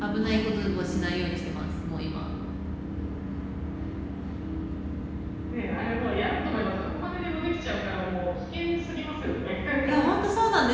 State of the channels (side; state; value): both; identical; correlation 1.00